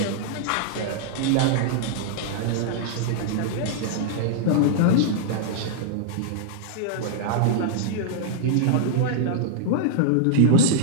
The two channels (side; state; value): both; different; correlation -0.01